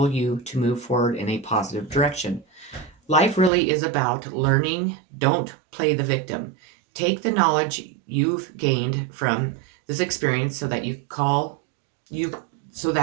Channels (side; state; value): left; drops out; at 3.5 s